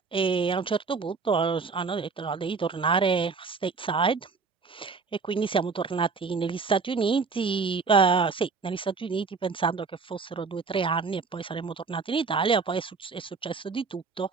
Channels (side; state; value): left; quieter; 4.7 dB